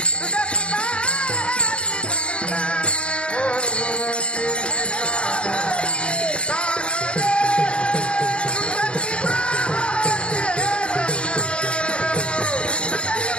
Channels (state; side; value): late; right; 0.057 ms